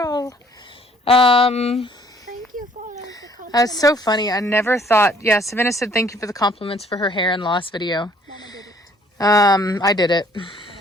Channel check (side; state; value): both; normal; correlation 0.60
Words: Thank you for the compliment. That's so funny. I never thought. Yeah, Savannah said thank you for the compliments for her hair and loss video. Mama did it. I